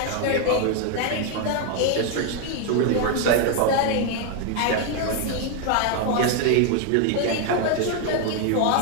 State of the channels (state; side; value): different; both; correlation 0.01